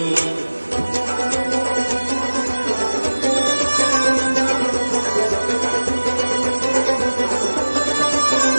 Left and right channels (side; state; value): both; inverted; correlation -1.00